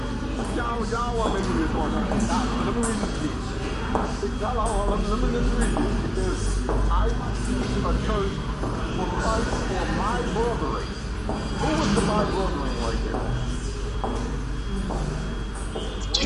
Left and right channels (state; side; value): identical; both; correlation 1.00